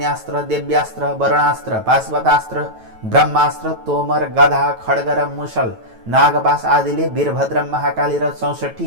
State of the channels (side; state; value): left; late; 9.1 ms